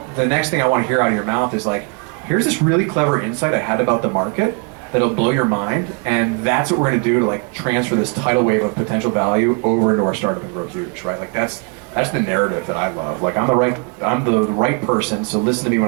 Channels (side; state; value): left; quieter; 32.5 dB